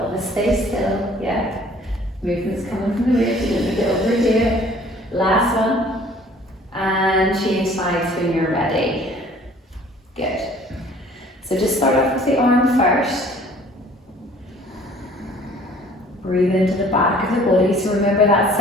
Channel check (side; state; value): both; normal; correlation 0.53